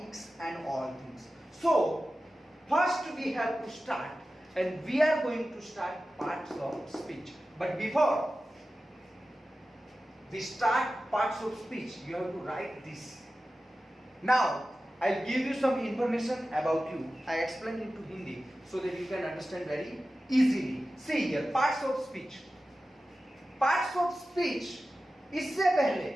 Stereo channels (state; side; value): normal; both; correlation 0.94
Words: and all things. So, first we have to start, and we are going to start parts of speech. But before we start parts of speech, you have to write this. Now, I'll give you some information about you. I explain into Hindi so that you can understand very easily. See here, parts of speech. Parts of speech, इससे पहले